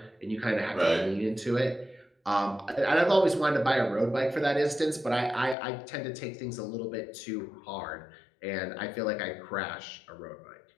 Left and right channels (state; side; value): drops out; right; at 5.6 s